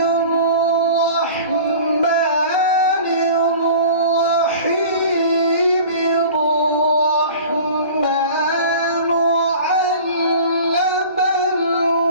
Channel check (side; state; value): both; inverted; correlation -0.41